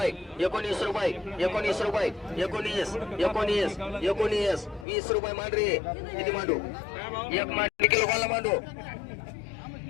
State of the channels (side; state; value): right; drops out; at 4.9 s